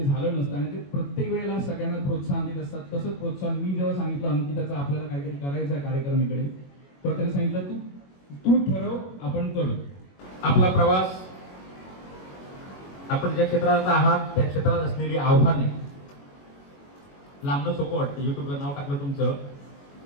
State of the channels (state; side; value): late; right; 21 ms